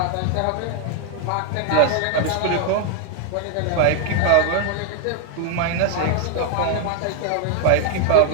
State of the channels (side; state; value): both; different; correlation 0.01